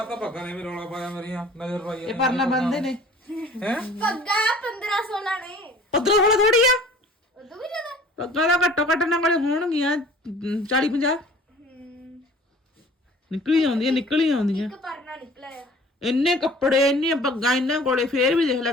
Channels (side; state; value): both; normal; correlation 0.49